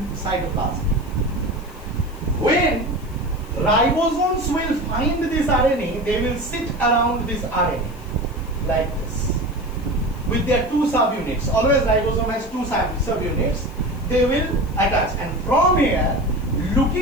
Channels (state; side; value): noise; left; hiss, 25 dB below the sound